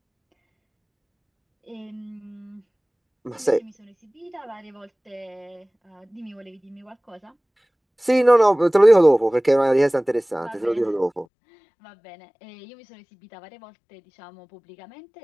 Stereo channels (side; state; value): right; drops out; at 11.2 s